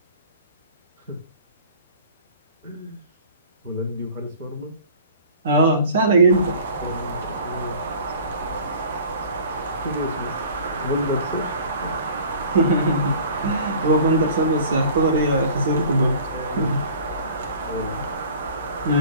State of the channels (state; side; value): inverted; both; correlation -0.46